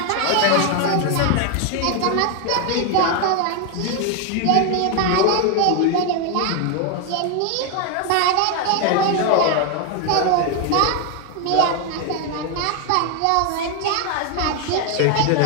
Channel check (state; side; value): different; both; correlation 0.01